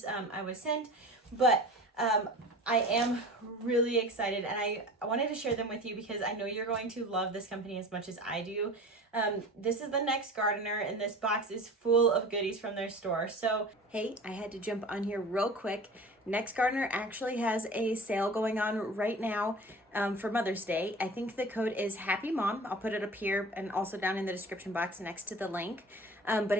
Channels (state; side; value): normal; both; correlation 0.38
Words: I was sent, but I am really excited, and I wanted to share them with you because I know you're going to love this company as much as I do. This is the Next Gardener, and this box is full of goodies from their store. So, hey, I had to jump on here real quick. Next Gardener actually has a sale going on right now for Mother's Day. I think the code is Happy Mom. I'll put it up here and also down in the description box next to the link.